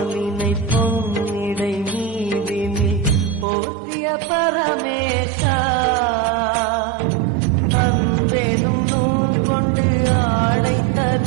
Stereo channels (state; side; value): drops out; left; at 3.5 s